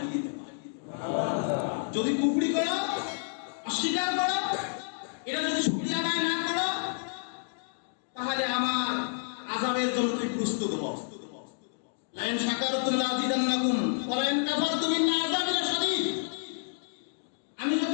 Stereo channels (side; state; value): right; silent; digital silence